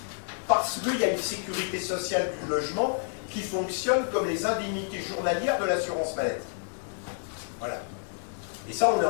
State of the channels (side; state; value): right; silent; digital silence